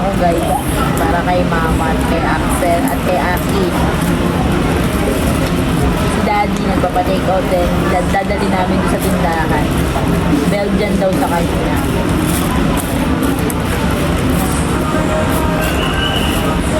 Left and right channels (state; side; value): identical; both; correlation 1.00